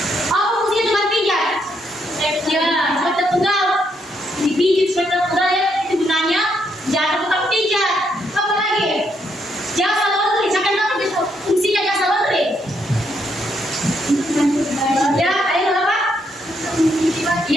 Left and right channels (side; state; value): both; normal; correlation 0.75